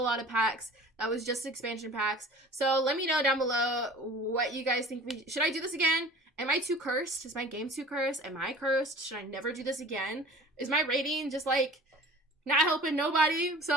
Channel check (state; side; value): normal; both; correlation 0.44